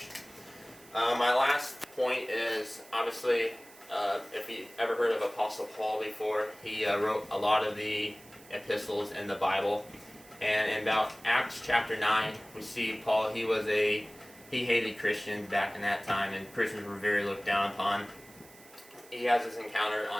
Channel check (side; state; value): right; noise; hiss, 23 dB below the sound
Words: My last point is, obviously, if you ever heard of Apostle Paul before, he wrote a lot of the epistles in the Bible. And in about Acts chapter 9, we see Paul, he hated Christians back in that time, and Christians were very looked down upon. He has this encounter